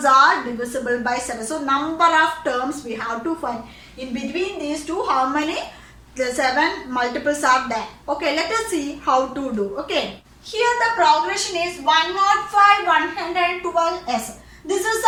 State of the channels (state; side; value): identical; both; correlation 1.00